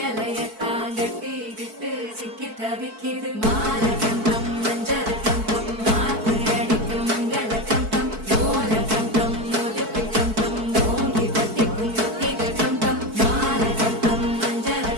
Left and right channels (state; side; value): late; left; 4.6 ms